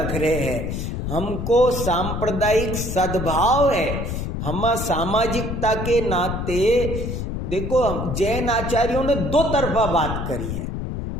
रहे हैं। हमको सांप्रदायिक सद्भाव है, हम सामाजिकता के नाते। देखो जैन आचार्यों ने 2 तरफा बात करी है।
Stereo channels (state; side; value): noise; left; rumble, 4 dB below the sound